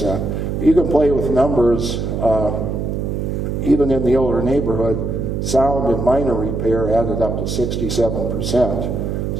You can play with numbers. Even in the older neighborhood, sound and minor repair added up to 67%.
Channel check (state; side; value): noise; right; hum, 2 dB below the sound